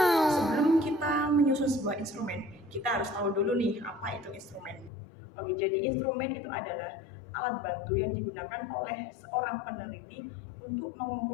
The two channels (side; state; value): right; drops out; at 4.9 s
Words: Sebelum kita menyusun sebuah instrumen, kita harus tahu dulu nih apa itu instrumen. Oke, jadi instrumen itu adalah alat bantu yang digunakan oleh seorang peneliti untuk